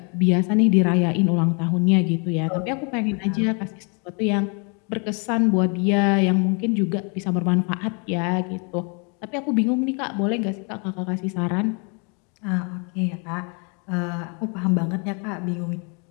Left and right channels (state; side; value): quieter; right; 35.5 dB